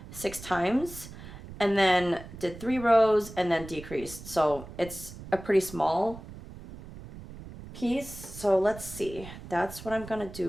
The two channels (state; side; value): noise; right; rumble, 14 dB below the sound